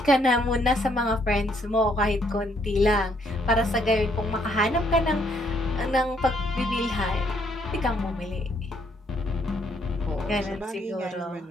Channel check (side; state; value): both; normal; correlation 0.69